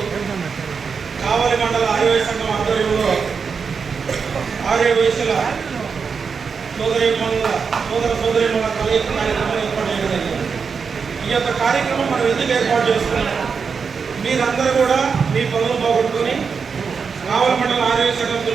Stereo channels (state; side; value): quieter; left; 5.7 dB